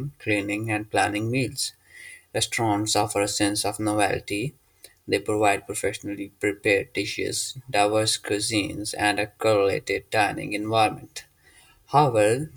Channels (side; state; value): both; identical; correlation 1.00